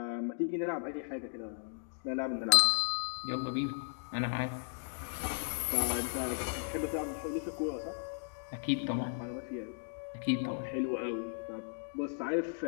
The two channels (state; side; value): silent; right; digital silence